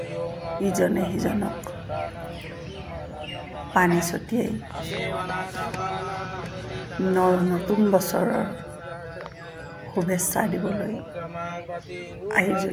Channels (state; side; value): identical; both; correlation 1.00